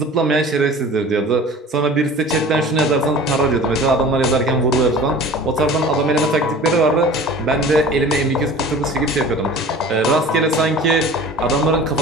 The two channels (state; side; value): normal; both; correlation 0.42